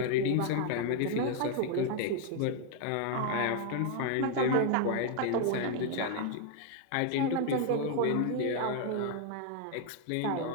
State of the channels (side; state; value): both; different; correlation 0.00